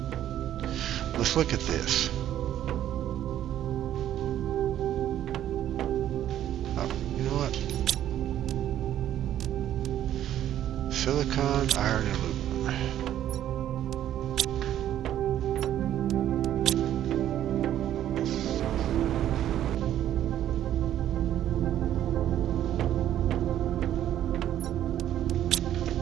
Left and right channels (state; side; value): quieter; left; 11.6 dB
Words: Let's look at this. Oh, you know what? Silicon, iron, and aluminum.